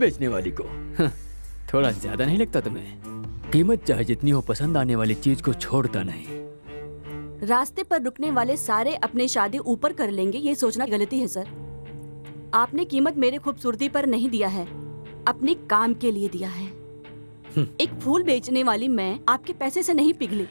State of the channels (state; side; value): inverted; both; correlation -1.00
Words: वाली को। थोड़ा ज्यादा नहीं लगता तुम्हें? कीमत चाहे जितनी हो, पसंद आने वाली चीज को छोड़ता नहीं। रास्ते पर रुकने वाले सारे अपने शादी ऊपर कर लेंगे, ये सोचना गलती है सर। आपने कीमत मेरे खूबसूरती पर नहीं दिया है, अपने काम के लिए दिया है। एक फूल बेचने वाली मैं आपके पैसे से नहीं पिघली,